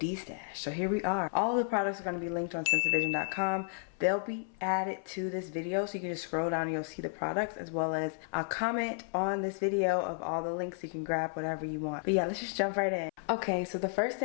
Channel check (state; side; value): silent; right; 56 dB below the other